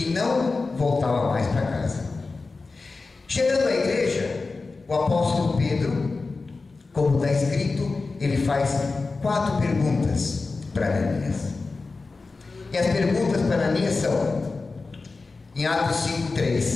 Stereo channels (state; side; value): quieter; right; 3.9 dB